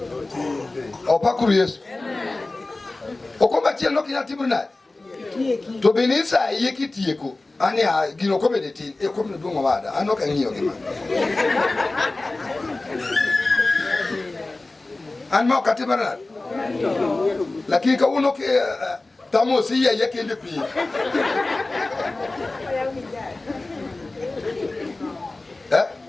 opakuru Yesu okomba chiel no kinya timo nade to benisa iye kitieko ani gino komede tin e komne duongo wada an ok ang'iyo gima an ma okatimo nade lakini kawuono ke tamo si iye kende pi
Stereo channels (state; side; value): quieter; right; 3.1 dB